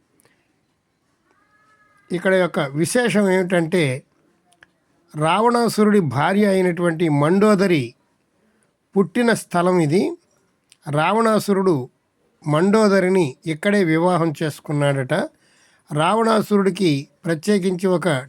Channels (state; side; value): identical; both; correlation 1.00